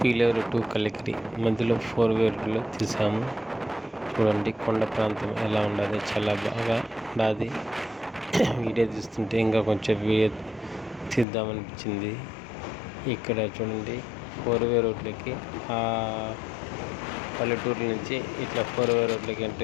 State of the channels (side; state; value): right; drops out; at 11.2 s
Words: టు కలికిరి మధ్యలో 4-వే రోడ్లో తీసాము. చూడండి కొండ ప్రాంతం ఎలా ఉండదు, చాలా బాగా ఉండదు. వీడియో తీస్తుంటే ఇంకా కొంచెం వీడియో తీద్దామనిపించింది. ఇక్కడ చూడండి 4-వే రోడ్లకి ఆ పల్లెటూరు నుంచి ఇట్లా 4-వే రోడ్లకి